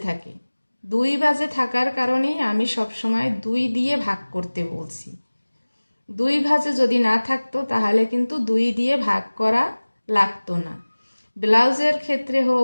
থাকে। 2 ভাঁজে থাকার কারণেই আমি সবসময় 2 দিয়ে ভাগ করতে বলছি। 2 ভাঁজে যদি না থাকতো তাহলে কিন্তু 2 দিয়ে ভাগ করা লাগতো না। ব্লাউজের ক্ষেত্রে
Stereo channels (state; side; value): inverted; both; correlation -1.00